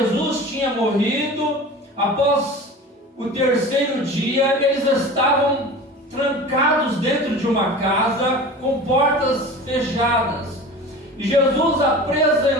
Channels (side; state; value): both; normal; correlation 0.36